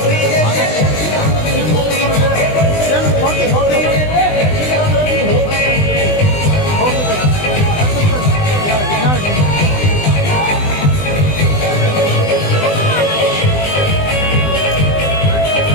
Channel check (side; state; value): right; late; 20 ms